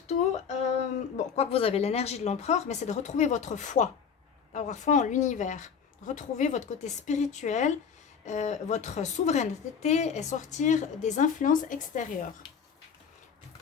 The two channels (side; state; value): right; quieter; 6.8 dB